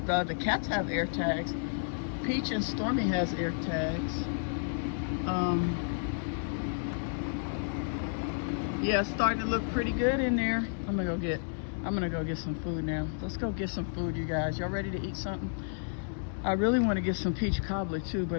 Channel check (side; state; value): right; silent; 57 dB below the other